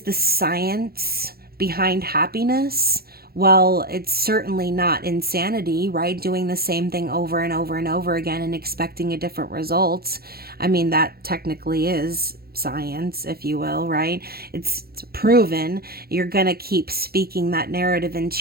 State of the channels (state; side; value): late; left; 0.45 ms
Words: the science behind happiness? Well, it's certainly not insanity, right? Doing the same thing over and over and over again and expecting a different result. I mean, that technically is science, if you will, right? It's proven. You're going to keep speaking that narrative